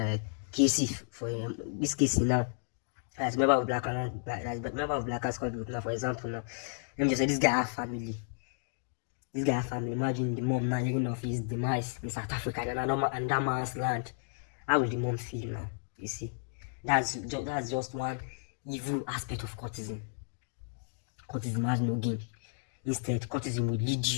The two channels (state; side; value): silent; right; digital silence